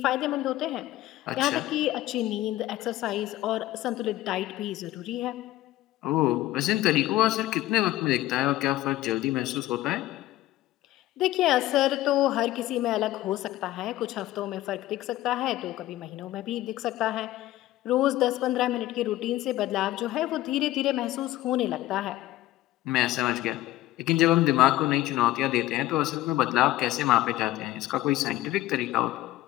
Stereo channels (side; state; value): right; quieter; 15.8 dB